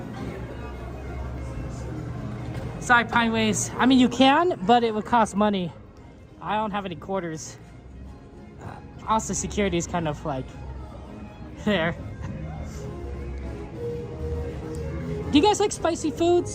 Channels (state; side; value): identical; both; correlation 1.00